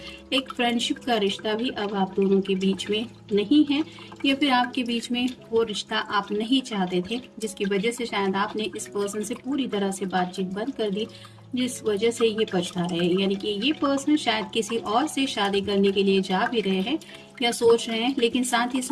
एक फ्रेंडशिप का रिश्ता भी अब आप दोनों के बीच में नहीं है, या फिर आपके बीच में वो रिश्ता आप नहीं चाहते थे, जिसकी वजह से शायद आपने इस पर्सन से पूरी तरह से बातचीत बंद कर दी, जिस वजह से ये पछता रहे हैं। यानी कि ये पर्सन शायद किसी और से शादी करने के लिए जा भी रहे हैं या सोच रहे हैं, लेकिन साथ ही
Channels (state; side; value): identical; both; correlation 1.00